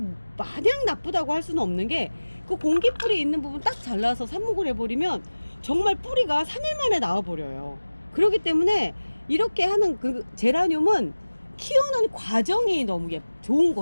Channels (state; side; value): inverted; both; correlation -1.00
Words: 마냥 나쁘다고 할 수는 없는 게, 그 공기뿌리 있는 부분 딱 잘라서 삽목을 해버리면 정말 뿌리가 3일 만에 나와버려요. 그렇기 때문에 이렇게 하는 그 제라늄은 키우는 과정이 너무 좋은